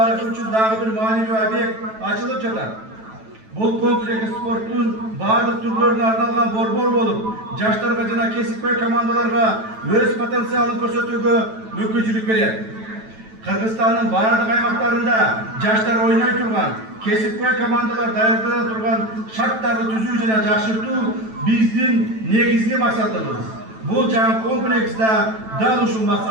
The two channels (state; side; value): late; left; 9.1 ms